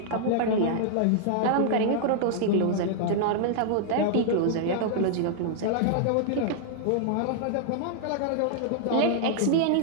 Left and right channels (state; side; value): different; both; correlation -0.01